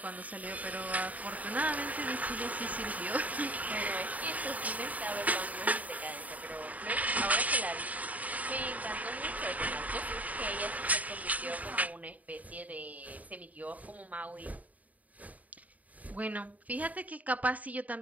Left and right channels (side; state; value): left; late; 0.073 ms